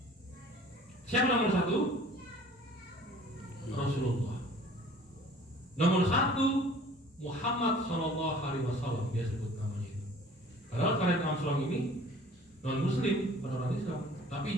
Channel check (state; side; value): normal; both; correlation 0.49